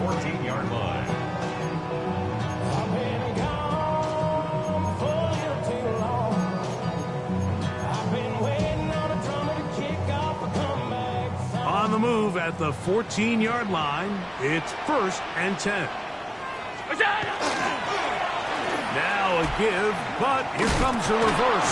14-yard line. On the move at the 14-yard line, it's first and 10. Now a give, but here comes the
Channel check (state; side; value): identical; both; correlation 1.00